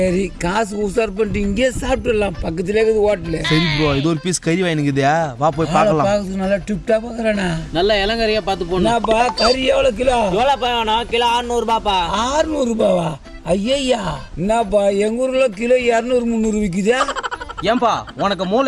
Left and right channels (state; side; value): identical; both; correlation 1.00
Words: காசு உஷார் பண்ணிட்டு இங்கே சாப்பிட்டுடலாம், பக்கத்துலேயே இருக்குது ஹோட்டலு. சரி ப்ரோ, இது ஒரு பீஸ் கறி வாங்கிக்குதா, வா போய் பார்க்கலாம். பார்க்கறதுக்கு நல்லா டிப்டா பார்க்குறேண்ணா. நல்ல இளங்கறியா பார்த்து போனாப்பா. கறி எவ்வளோ கிலோ? எவ்வளோப்பா வேணும்? கிலோ 600 ரூபாப்பா. 600 ரூபாவா? ஐயா, என்னப்பா எங்க ஊர்ல கிலோ 200-300 விற்குதா? ஏன்பா உனக்கு